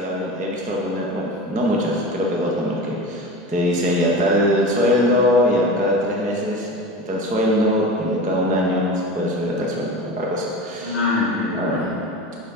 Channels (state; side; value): normal; both; correlation 0.30